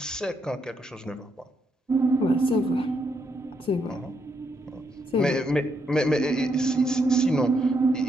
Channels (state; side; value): normal; both; correlation 0.78